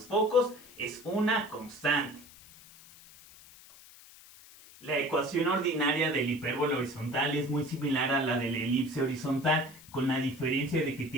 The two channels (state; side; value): noise; left; hiss, 21 dB below the sound